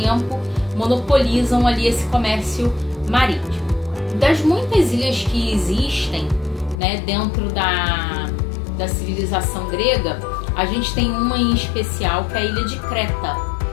monopolizam ali esse comércio marítimo. Das muitas ilhas que existem, né, dentro da civilização grega, a gente tem uma em especial que é a ilha de Creta,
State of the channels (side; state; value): right; drops out; at 6.8 s